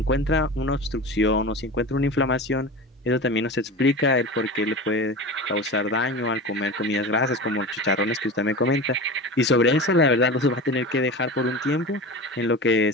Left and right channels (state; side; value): normal; both; correlation 0.30